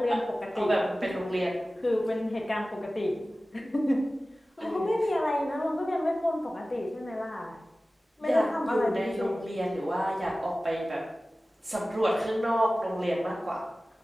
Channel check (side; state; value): both; normal; correlation 0.97